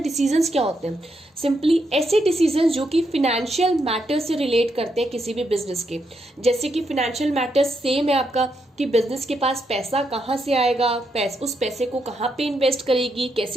डिसीजंस क्या होते हैं? सिंपली ऐसे डिसीजंस जो कि फिनेंशियल मैटर्स से रिलेट करते हैं किसी भी बिजनेस के. जैसे कि फिनेंशियल मैटर्स सेम है आपका कि बिजनेस के पास पैसा कहाँ से आएगा, उस पैसे को कहाँ पे इन्वेस्ट करेगी,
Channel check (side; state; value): both; normal; correlation 0.80